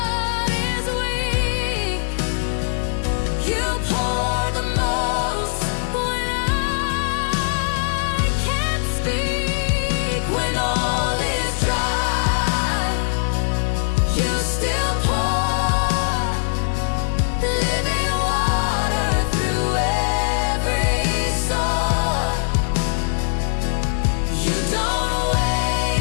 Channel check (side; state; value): right; silent; 65 dB below the other